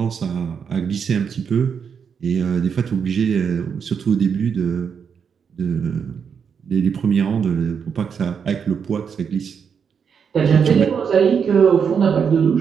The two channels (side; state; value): left; quieter; 6.8 dB